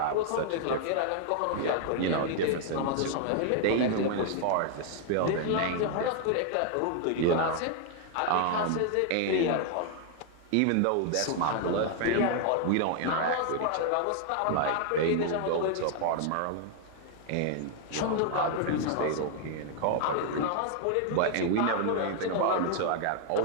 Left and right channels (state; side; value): different; both; correlation 0.00